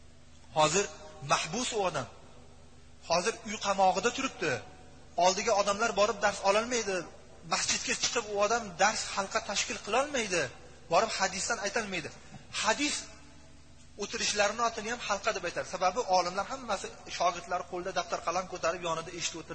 hozir mahbus u odam. Hozir uy qamog'ida turibdi. Oldiga odamlar borib dars ololmaydi. Masjidga chiqib u odam dars halqa tashkil qila olmaydi. Borib hadisdan aytolmaydi. Hadis o'tirishlarini otini ham halqa deb aytadi. Sababi olimlar hammasi shogirdlari qo'lda daftar qalam ko'tarib yonida eshitib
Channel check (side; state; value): both; identical; correlation 1.00